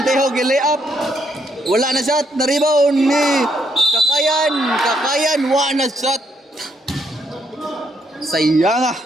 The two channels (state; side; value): normal; both; correlation 0.74